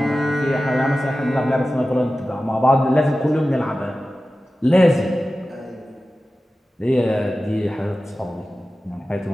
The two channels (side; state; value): both; normal; correlation 0.95